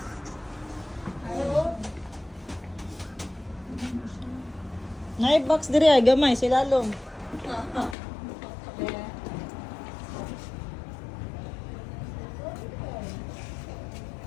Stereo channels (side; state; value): right; drops out; at 8.0 s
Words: Box diri ay gamay silalong.